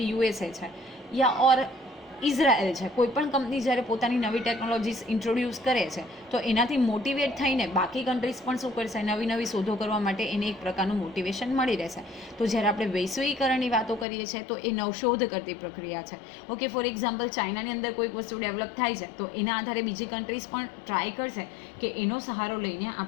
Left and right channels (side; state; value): right; drops out; at 14.1 s